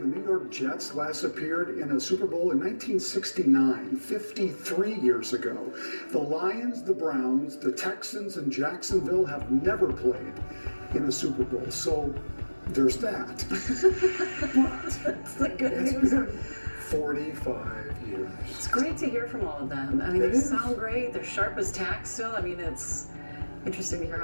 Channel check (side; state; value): both; inverted; correlation -1.00